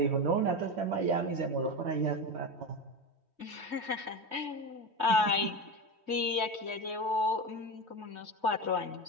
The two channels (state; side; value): late; left; 3.1 ms